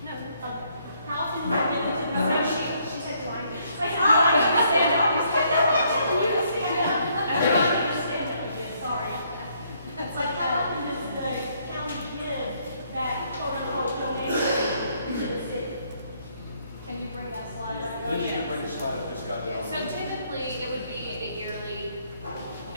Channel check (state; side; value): inverted; both; correlation -0.69